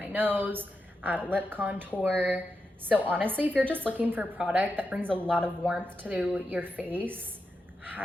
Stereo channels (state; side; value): normal; both; correlation 0.87